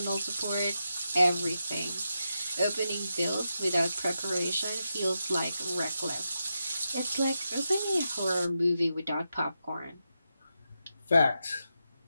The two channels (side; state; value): both; inverted; correlation -0.87